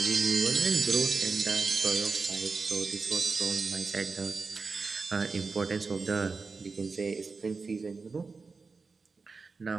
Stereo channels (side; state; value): left; quieter; 4.4 dB